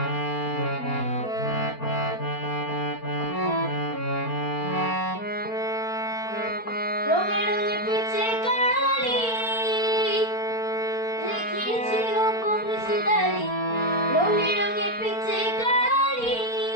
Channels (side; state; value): right; late; 4.4 ms